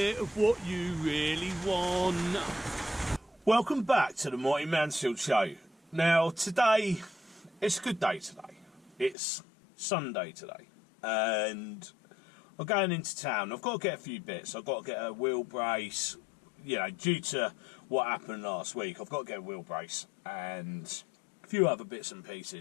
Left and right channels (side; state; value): right; drops out; at 9.2 s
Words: of what you really want. Welcome back to the Mighty Mansfield Show. Now, today, it's a good day today. It's Sunday today. And I'm going into town. I've got to get a few bits. I've got to get a wheel brace. You know, due to what happened last week, I've got to get a wheel brace and a few other bits and